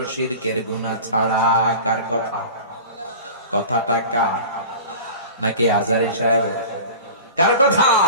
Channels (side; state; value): both; inverted; correlation -0.37